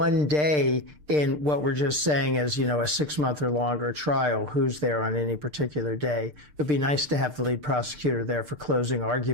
day in what we're just saying is, a 6-month or longer trial. Who's there on any particular day? It'd be nice to have the lead prosecutor there for closing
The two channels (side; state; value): left; late; 6.7 ms